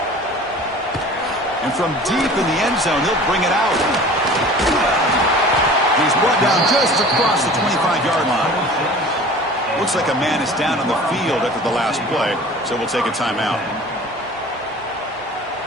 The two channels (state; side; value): normal; both; correlation 0.43